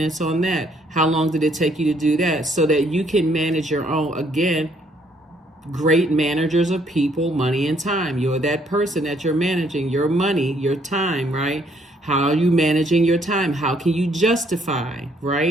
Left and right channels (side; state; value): both; normal; correlation 0.67